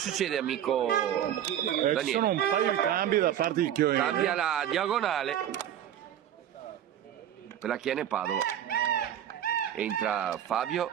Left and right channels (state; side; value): quieter; left; 10.5 dB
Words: amico Ci Daniele? sono un paio di cambi da parte di Chioene. Cambia la diagonale per la Chiene Padova. Entra Fabio